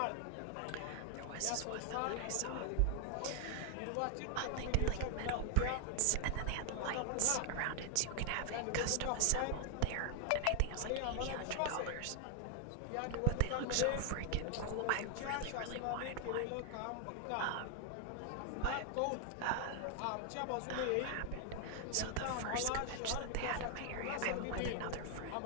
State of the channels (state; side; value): different; both; correlation 0.00